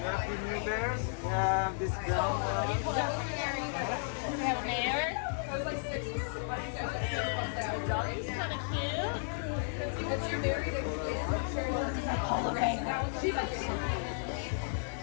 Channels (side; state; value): right; silent; 55 dB below the other